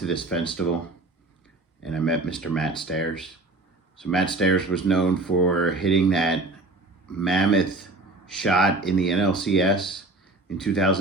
this festival and I met Mr. Matt Stairs. So Matt Stairs was known for hitting that mammoth shot in the NLCS in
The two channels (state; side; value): quieter; left; 3.1 dB